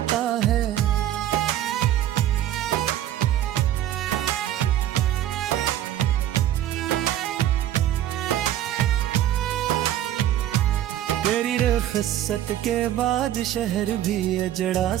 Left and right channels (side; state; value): left; quieter; 12.2 dB